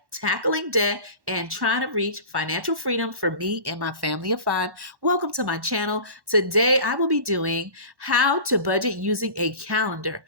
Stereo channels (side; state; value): left; late; 1.1 ms